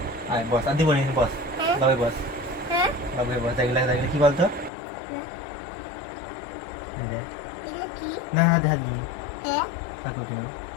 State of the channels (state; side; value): drops out; right; at 4.7 s